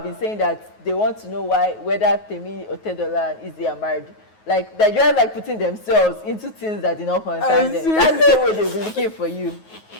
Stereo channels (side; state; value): right; late; 9.4 ms